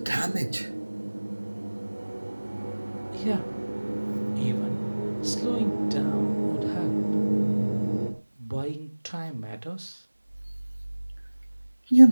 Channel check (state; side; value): inverted; both; correlation -1.00